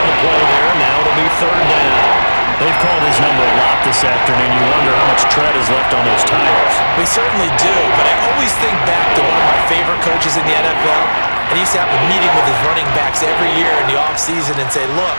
the play there. Now it'll be 3rd down. They've called his number a lot this afternoon. You wonder how much tread is left on those tires. We certainly do, but I always think back to one of my favorite coaches in the NFL. And he used to have a meeting with his running backs every year in the offseason and say, look,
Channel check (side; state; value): both; inverted; correlation -1.00